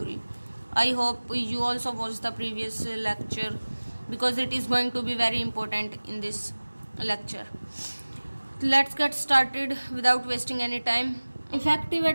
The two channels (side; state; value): both; inverted; correlation -1.00